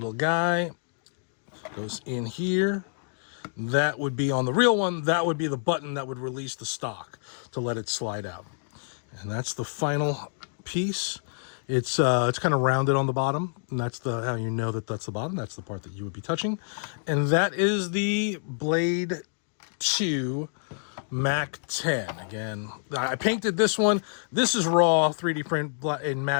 guy goes in here. That would be on the real one. That would be the button that would release the stock to let it slide out. And that's the final piece. It's kind of rounded on the bottom, and that's how you know that that's the bottom. That's the part that you would be touching. And that is the Blade 2 Mac 10. Again, I painted this one. This is raw 3D print in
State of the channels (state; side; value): silent; right; digital silence